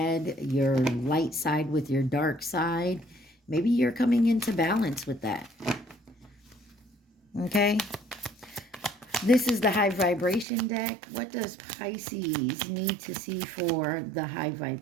your light side with your dark side. Maybe you're coming into balance with that. Okay. This is the high vibration deck. What does Pisces need to see for the high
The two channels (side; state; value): left; drops out; at 10.5 s